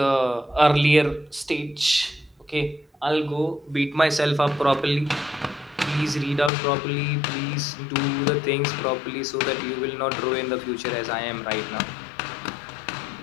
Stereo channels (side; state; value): right; drops out; at 6.5 s